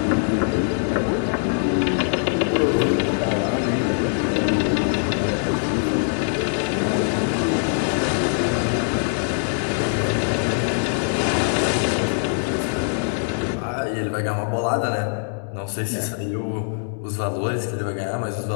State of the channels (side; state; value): right; silent; 64 dB below the other